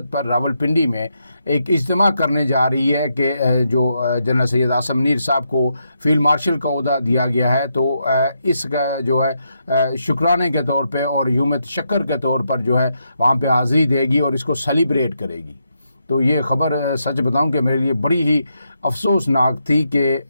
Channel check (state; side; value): inverted; both; correlation -0.81